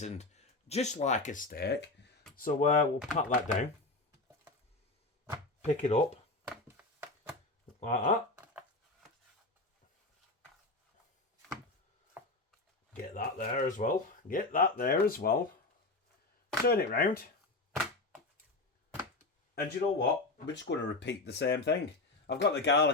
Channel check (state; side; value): quieter; right; 3.2 dB